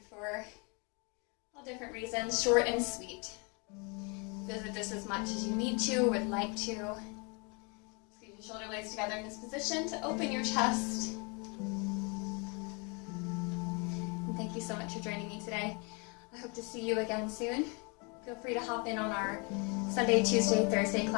for all different reasons, short and sweet. Visit this as much as you need to, would like to. Squeeze your shoulder blades together in this position to open your chest. And thank you so much for joining me today. I hope to see you again soon. Feel free to hop in on our Sunday, Tuesday, Thursday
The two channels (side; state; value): right; quieter; 31.5 dB